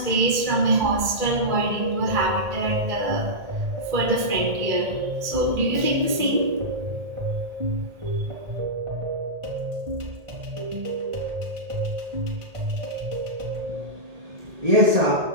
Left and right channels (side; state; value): left; late; 1.8 ms